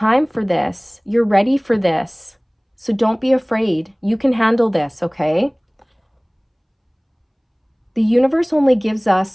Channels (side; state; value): both; identical; correlation 1.00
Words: for this. You're ready for this. So don't be afraid. You can handle this, okay? The universe only gives